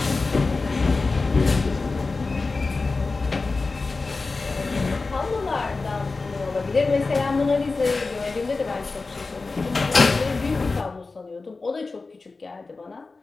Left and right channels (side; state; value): right; quieter; 3.8 dB